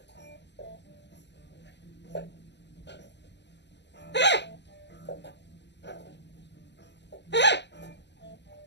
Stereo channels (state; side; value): late; right; 0.51 ms